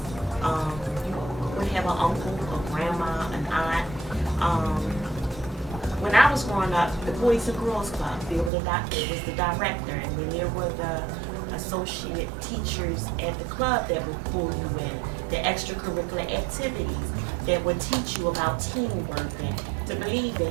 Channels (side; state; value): left; drops out; at 8.5 s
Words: you would have an uncle, a grandma, an aunt. When I was growing up, the Boys and Girls Club, there was the director, and then there were the associate teachers at the club that would pull you in, the extracurricular activities that would teach you about teamwork and to believe